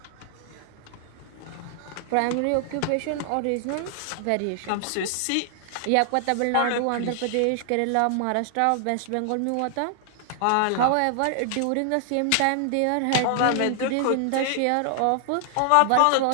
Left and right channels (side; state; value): both; different; correlation 0.00